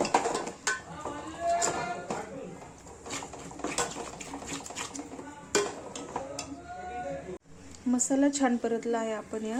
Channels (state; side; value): identical; both; correlation 1.00